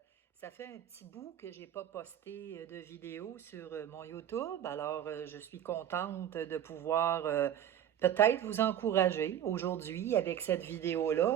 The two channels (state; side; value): quieter; left; 10.4 dB